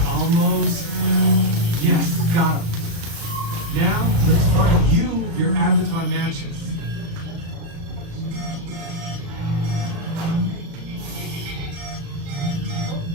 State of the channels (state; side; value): late; left; 36 ms